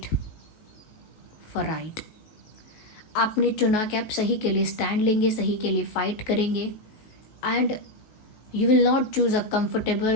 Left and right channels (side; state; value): right; late; 19 ms